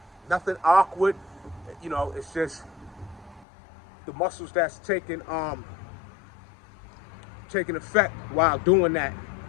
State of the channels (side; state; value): right; drops out; at 3.5 s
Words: Nothing awkward, It's just the muscles that's taking effect while doing that